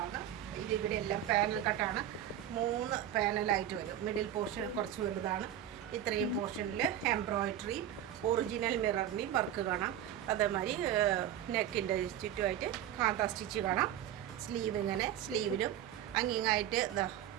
ഇതിവിടെ എല്ലാം പാനൽ കട്ടാണ്. 3 പാനലായിട്ട് വരും. മിഡിൽ പോർഷൻ കുറച്ച് വലുതാണ്. ഇത്രയും പോർഷനിൽ എംബ്രോയിഡറി, ഒറിജിനൽ മിററിൻ്റെയും വർക്ക് കാണാം. അതേമാതിരി നെക്കിൻ്റെ ചുറ്റുമായിട്ട് കാന്ത സ്റ്റിച്ച് കാണാം. സ്ലീവ് ഇങ്ങനെ, സ്ലീവിലും അങ്ങിങ്ങായിട്ട്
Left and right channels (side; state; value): left; quieter; 11.1 dB